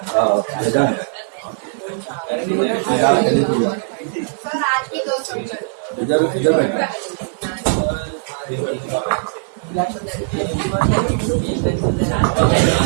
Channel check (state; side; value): silent; left; digital silence